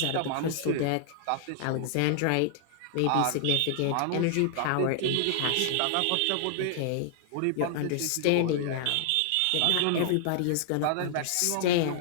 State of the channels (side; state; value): both; different; correlation -0.01